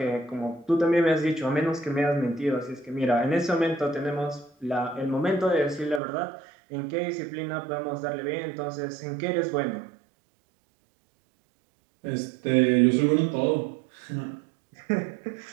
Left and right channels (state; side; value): drops out; left; at 6.0 s